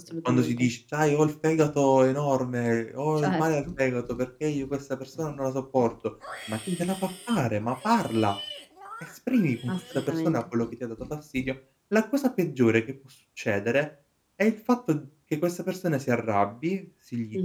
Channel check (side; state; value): both; identical; correlation 1.00